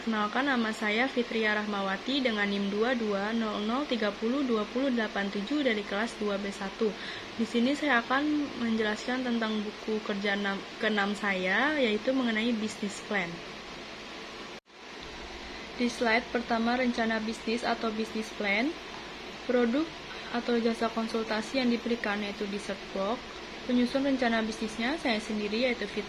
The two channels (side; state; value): both; identical; correlation 1.00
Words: nama saya Fitria Rahmawati dengan NIM 2200302087 dari kelas 2B1. Di sini saya akan menjelaskan tentang buku kerja ke-6 saya, yaitu mengenai business plan. Di slide pertama, rencana bisnis atau business plan. Produk atau jasa konsultasi yang diberikan yaitu di search box. Penyusun rencana bisnisnya saya sendiri yaitu